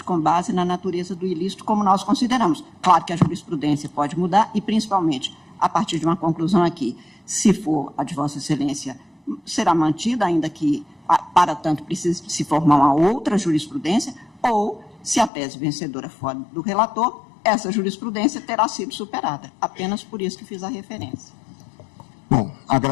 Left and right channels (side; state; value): right; drops out; at 15.3 s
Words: com base na natureza do ilícito, como nós consideramos. Claro que a jurisprudência pode mudar e, principalmente, a partir de uma conclusão aqui, se for a de Vossa Excelência, será mantida, ainda que, para tanto, precise se formar uma outra jurisprudência, ou, se a tese vencedora for do relator, essa jurisprudência terá sido superada. Apenas por isso que fiz a referência. Bom,